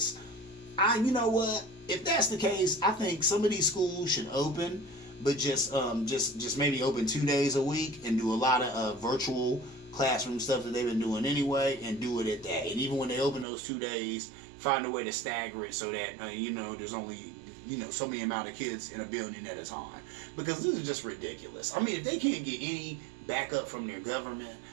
You know what? If that's the case, I think some of these schools should open, but just maybe open 2 days a week and do a lot of virtual classroom stuff that they've been doing anyway, and do it at that. And even when they open those 2 days, find a way to stagger it so that there's only so many amount of kids in a building at a time, because this is just ridiculous. I mean, if they can't get any backup from their government,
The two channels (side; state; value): left; drops out; at 13.5 s